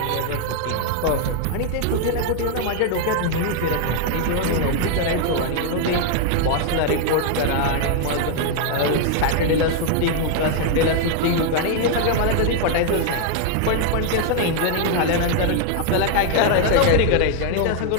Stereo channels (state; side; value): different; both; correlation 0.00